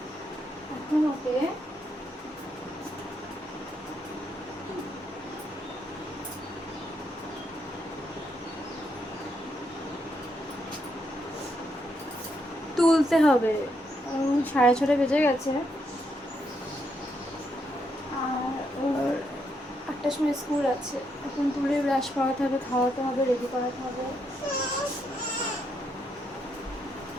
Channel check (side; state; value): both; normal; correlation 0.78